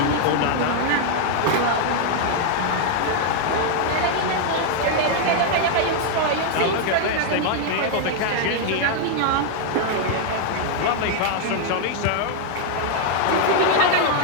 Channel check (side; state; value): both; different; correlation 0.00